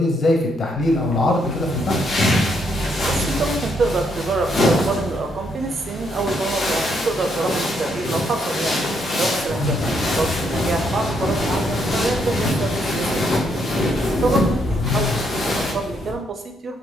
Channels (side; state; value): both; normal; correlation 0.74